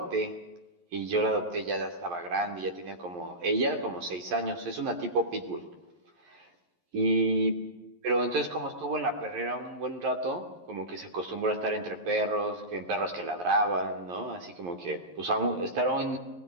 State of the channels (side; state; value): left; late; 11 ms